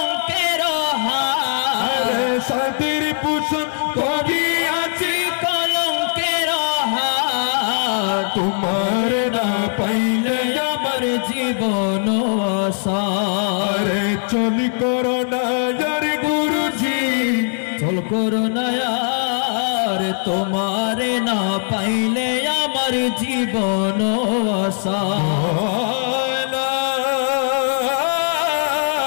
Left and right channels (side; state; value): right; silent; digital silence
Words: हार अरे सातेरी पूषण करी आजी कलंकेर हार तुम्हारे ना पाइले আমার জীবন আসার चल करो ना यार गुरुजी চল করো না আর তোমারে না পাইলে আমার জীবন আসার